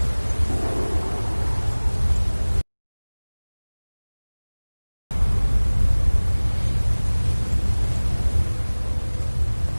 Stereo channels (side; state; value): both; inverted; correlation -1.00